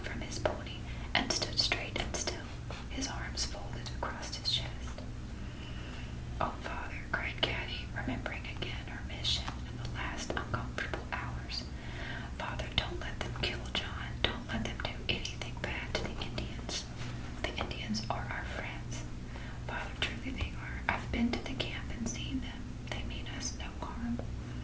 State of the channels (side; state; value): both; identical; correlation 1.00